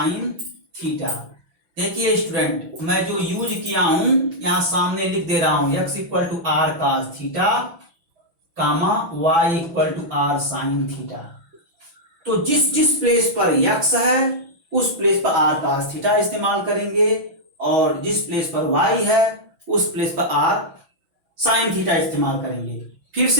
theta. देखिए स्टूडेंट, मैं जो यूज किया हूं यहां सामने लिख दे रहा हूं, x equal to r cos theta comma y equal to r sine theta. तो जिस जिस प्लेस पर x है उस प्लेस पर r cos थीटा इस्तेमाल करेंगे, और जिस प्लेस पर y है उस प्लेस पर r साइन थीटा इस्तेमाल करेंगे। फिर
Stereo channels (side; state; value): left; late; 5.9 ms